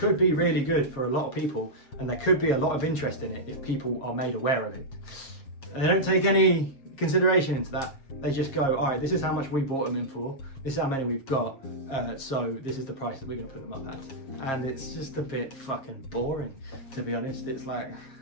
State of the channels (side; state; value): right; late; 7.4 ms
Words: be really good for a lot of people, and there could be a lot of interest in it if people are made aware of it. And they don't take any consideration into that. They just go, all right, this is how much we bought them in for, this is how many we've got, so this is the price that we're going to put them up at. And it's just a bit fucking boring, to be honest. It's like,